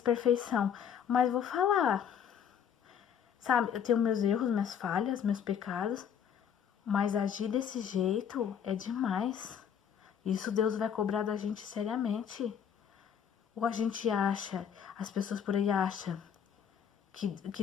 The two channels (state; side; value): quieter; right; 8.2 dB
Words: mas vou falar. Sabe, eu tenho meus erros, minhas falhas, meus pecados, mas agir desse jeito é demais. Isso Deus vai cobrar da gente seriamente. Ou a gente acha, as pessoas por aí acham que